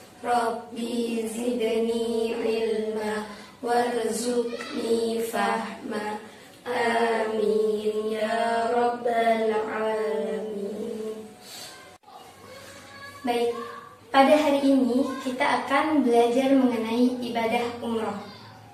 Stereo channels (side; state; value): both; identical; correlation 1.00